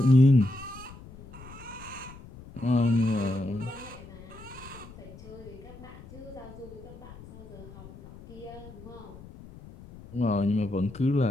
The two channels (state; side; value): noise; left; rumble, 17 dB below the sound